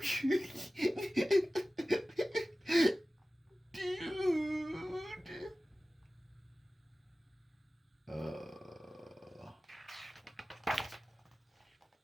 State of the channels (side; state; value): both; normal; correlation 0.96